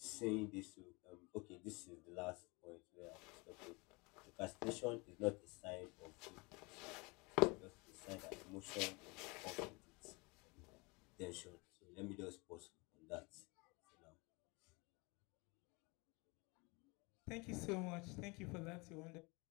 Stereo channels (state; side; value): quieter; right; 27.3 dB